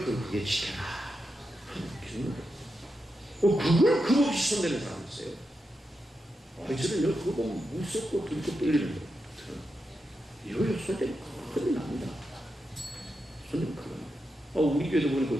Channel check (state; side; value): normal; both; correlation 0.87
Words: 거룩하게 지켜라. 그걸 금없이 손대는 사람이 있어요. 저는 그거 보면 무섭고 들고 떨리는 거예요. 이거요 손대면 큰일 납니다. 손대면 큰일 납니다. 우리 교회도 보니까